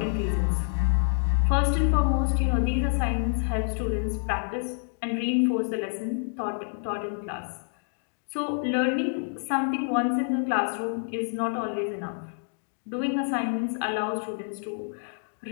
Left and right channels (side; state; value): right; silent; digital silence